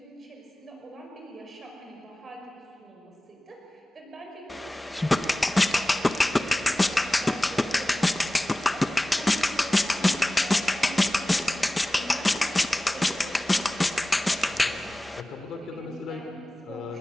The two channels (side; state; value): both; normal; correlation 0.97